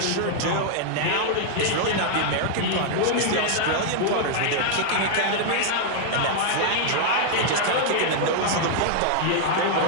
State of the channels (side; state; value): both; different; correlation -0.01